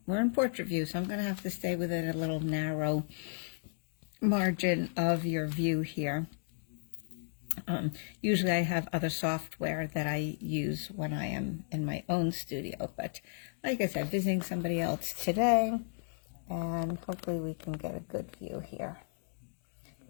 we're in portrait view, so I'm going to have to stay within a little narrow margin of your view here. Usually I have other software that I use when I am in my own studio, but like I said, visiting somebody else today, and hopefully we can get a good view here.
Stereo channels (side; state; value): right; silent; digital silence